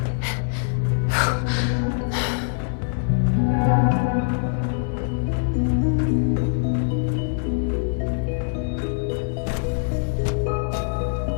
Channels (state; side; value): silent; right; digital silence